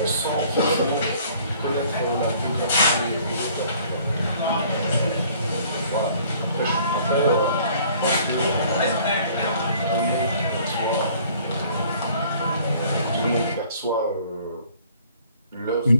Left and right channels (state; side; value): inverted; both; correlation -0.56